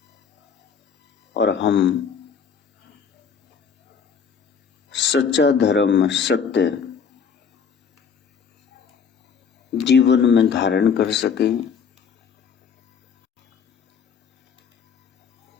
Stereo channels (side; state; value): right; quieter; 6.5 dB